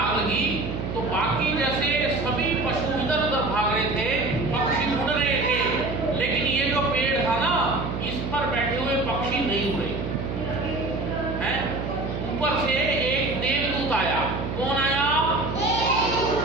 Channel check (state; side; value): noise; right; hum, 4 dB below the sound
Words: लगी तो बाकी जैसे सभी पशु इधर उधर भाग रहे थे, पक्षी उड़ रहे थे, लेकिन ये जो पेड़ था ना, इस पर बैठे हुए पक्षी नहीं उड़े हैं। ऊपर से एक देवदूत आया। कौन आया?